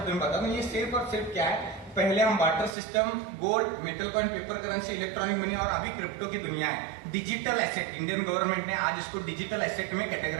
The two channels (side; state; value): left; drops out; at 2.8 s